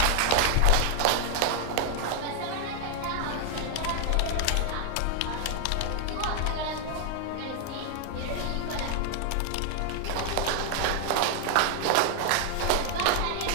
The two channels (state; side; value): different; both; correlation 0.00